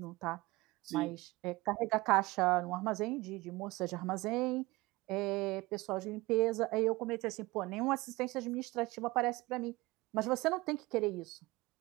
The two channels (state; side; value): quieter; left; 21.3 dB